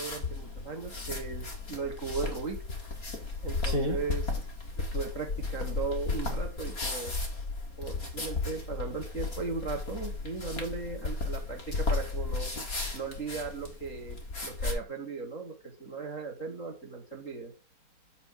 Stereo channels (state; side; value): late; right; 4.2 ms